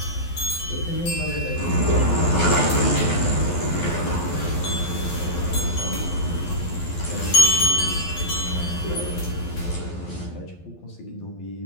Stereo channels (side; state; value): right; late; 12 ms